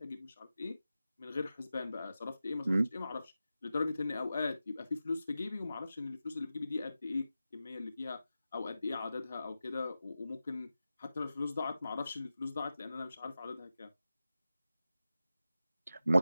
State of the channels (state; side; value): inverted; both; correlation -0.93